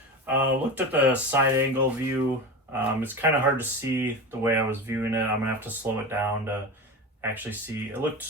Looked at the side angle view. It's kind of hard to see the way I was viewing it. I'm gonna have to slow it down to actually see. It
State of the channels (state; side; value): normal; both; correlation 0.25